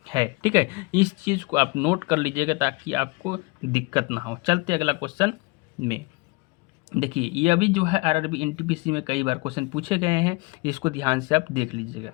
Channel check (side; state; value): right; quieter; 25.4 dB